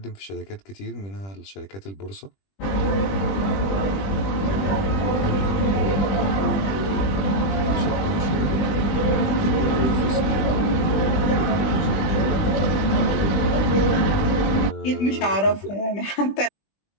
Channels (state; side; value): late; right; 20 ms